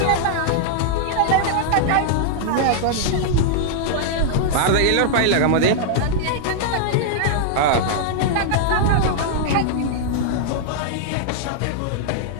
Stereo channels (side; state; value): both; different; correlation -0.01